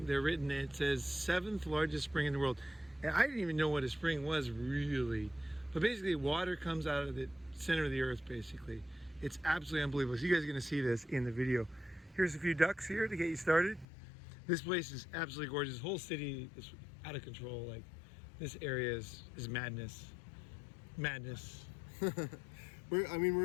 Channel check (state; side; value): drops out; right; at 13.9 s